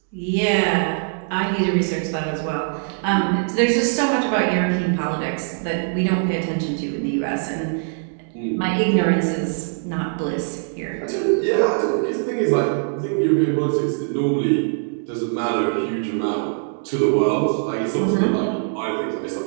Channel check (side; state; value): left; silent; digital silence